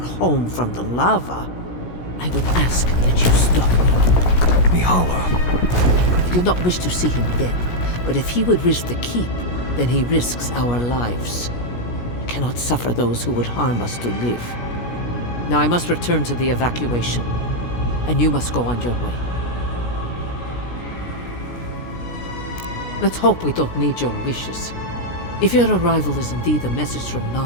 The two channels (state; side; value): late; right; 17 ms